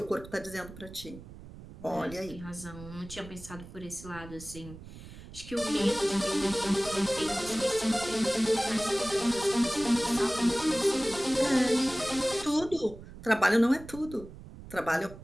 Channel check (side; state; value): right; noise; rumble, 16 dB below the sound